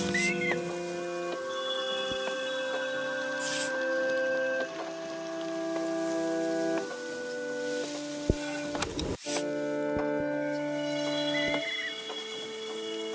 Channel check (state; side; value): identical; both; correlation 1.00